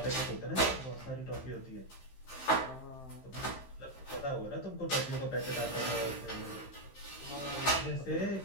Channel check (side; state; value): right; late; 15 ms